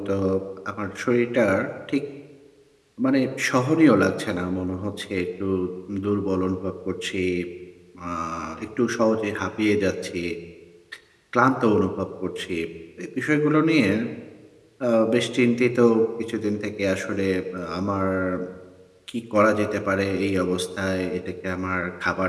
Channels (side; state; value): both; identical; correlation 1.00